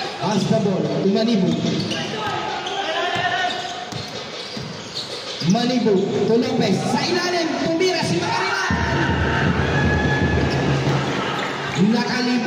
pass the ball to Manibu. Manibu to Lopez. Sa ilalim, tumira si Makarilay.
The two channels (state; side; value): identical; both; correlation 1.00